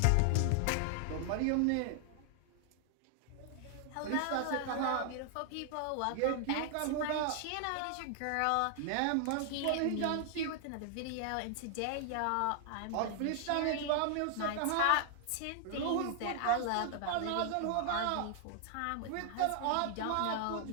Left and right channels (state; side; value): different; both; correlation 0.00